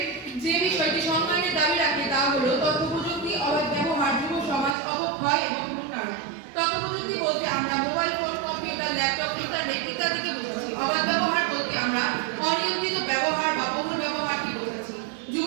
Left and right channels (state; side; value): drops out; left; at 4.8 s